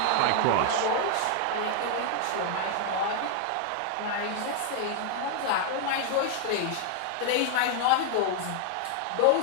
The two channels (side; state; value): both; different; correlation 0.00